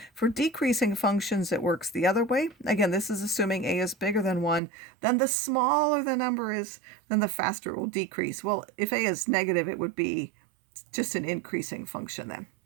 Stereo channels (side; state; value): left; drops out; at 4.6 s